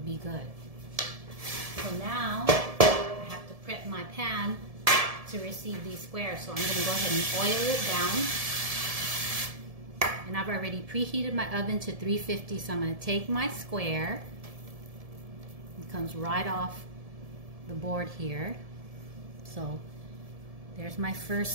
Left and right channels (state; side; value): late; left; 1.7 ms